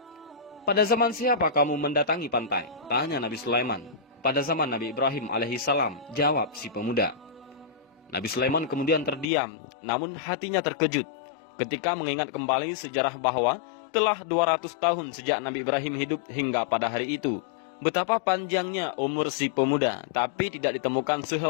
'Pada zaman siapa kamu mendatangi pantai?' tanya Nabi Sulaiman. 'Pada zaman Nabi Ibrahim alaihissalam,' jawab si pemuda. Nabi Sulaiman kemudian terdiam, namun hatinya terkejut ketika mengingat kembali sejarah bahwa telah 200 tahun sejak Nabi Ibrahim hidup hingga pada hari itu. Betapa panjangnya umur si pemuda, tapi tidak ditemukan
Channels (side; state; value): right; drops out; at 9.2 s